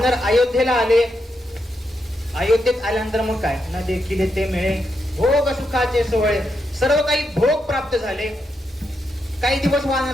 अयोध्येला आले. अयोध्येत आल्यानंतर मग काय, न देखील ते मिळे भोग सुखाचे सोहळे, सर्व काही भोग प्राप्त झाले. काही दिवस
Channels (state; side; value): normal; both; correlation 0.83